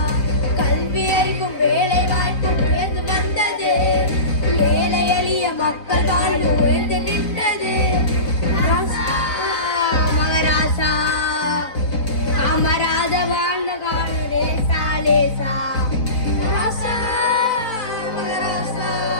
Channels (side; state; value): right; late; 4.0 ms